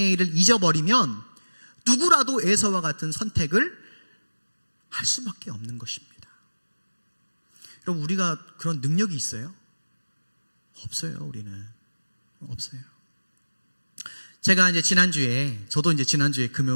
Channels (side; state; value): both; inverted; correlation -1.00